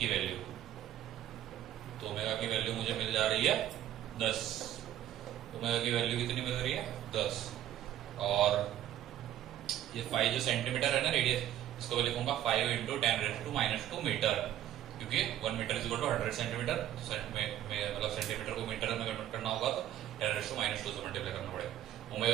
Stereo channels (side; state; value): left; quieter; 12.0 dB